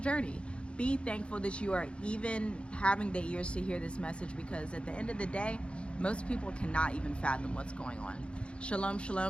Be thankful that you are even having the ears to hear this message, because at the end of the day, most people cannot even fathom what's going on. Shalom,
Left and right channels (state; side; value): late; right; 0.058 ms